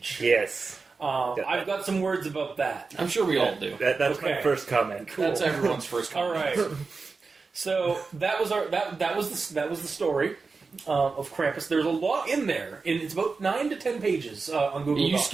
Yes. I've got some words about that. I'm sure we all do. That's Okay. my first comment. Cool. That's everyone's first comment. All right. So that was the story of Krampus. There's a lot in there. It's about 9 to 10 pages on Google You Docs.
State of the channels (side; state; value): left; quieter; 4.4 dB